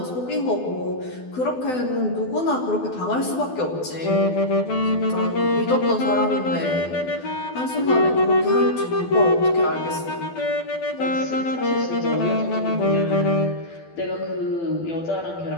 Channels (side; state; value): right; late; 12 ms